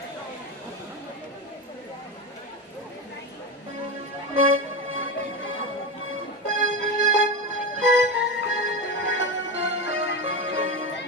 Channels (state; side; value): normal; both; correlation 0.19